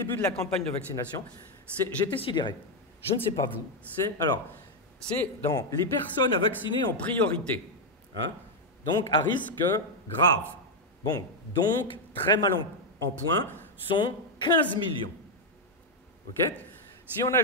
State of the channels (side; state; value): both; normal; correlation 0.01